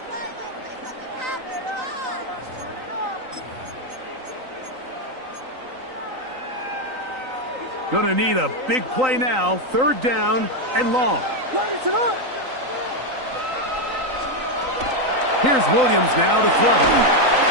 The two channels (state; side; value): late; left; 3.9 ms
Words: Gonna need a big play now. Third down and long. Here's Williams now to throw.